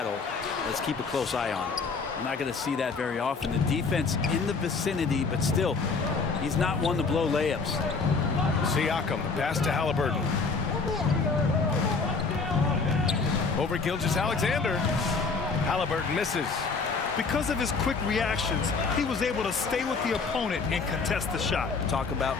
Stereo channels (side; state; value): right; quieter; 4.6 dB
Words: let's keep a close eye on it. We're not going to see that very often. The defense in the vicinity, but still, he's not one to blow layups. Siakam, the pass to Haliburton. Over Gilgeous-Alexander. Haliburton misses. Because of his quick reactions, he was able to stay with the opponent and contest the shot. Talk about